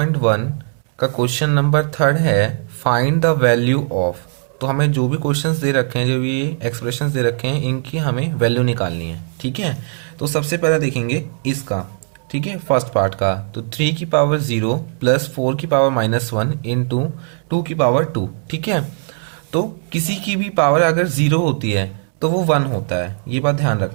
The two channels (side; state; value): left; silent; digital silence